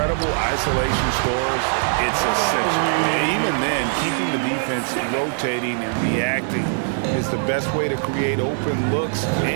isolation scores, it's essential. Even then, keeping the defense rotating and reacting is the best way to create open looks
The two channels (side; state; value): left; silent; 61 dB below the other